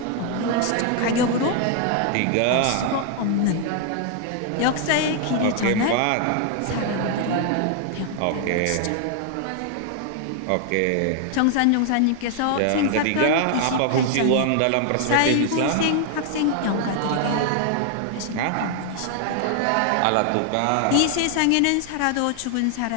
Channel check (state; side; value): different; both; correlation 0.00